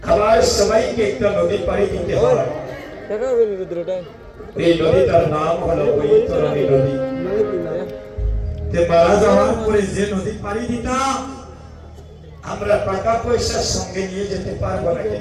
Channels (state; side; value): identical; both; correlation 1.00